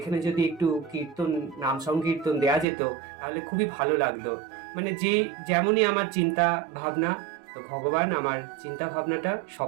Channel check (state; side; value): drops out; left; at 2.7 s